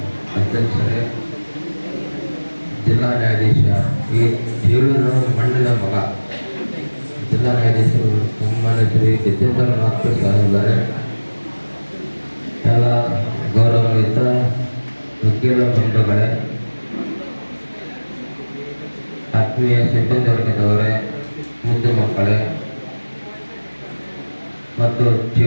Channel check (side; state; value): both; inverted; correlation -1.00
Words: ಅಧ್ಯಕ್ಷರೇ, ಜಿಲ್ಲಾ ನ್ಯಾಯಾಧೀಶ ಈ ಜೀವನ ಮಣ್ಣಿನ ಮಗ ಜಿಲ್ಲಾ ನ್ಯಾಯಾಧೀಶರು ಸನ್ಮಾನ್ಯ ಶ್ರೀ ಗಜೇಂದ್ರನಾಥ್ ಸಾಹೇಬರೇ, ಎಲ್ಲ ಗೌರವಾನ್ವಿತ ವಕೀಲ ಬಂಧುಗಳೇ, ಆತ್ಮೀಯ ಸಿಬ್ಬಂದಿ ವರ್ಗದವರೇ, ಮುದ್ದು ಮಕ್ಕಳೇ ಮತ್ತು